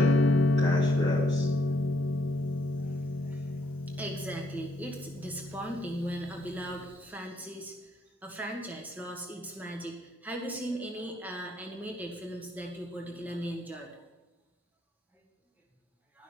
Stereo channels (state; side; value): normal; both; correlation 0.73